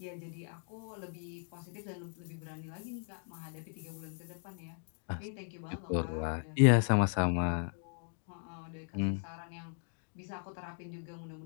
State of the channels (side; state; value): right; silent; 53 dB below the other